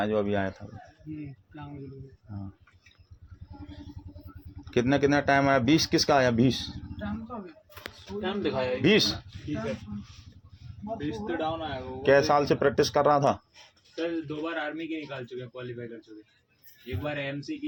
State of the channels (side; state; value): both; identical; correlation 1.00